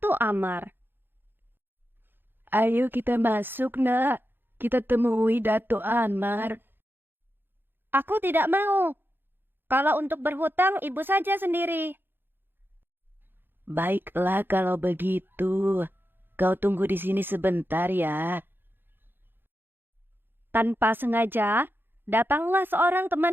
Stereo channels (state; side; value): late; left; 0.10 ms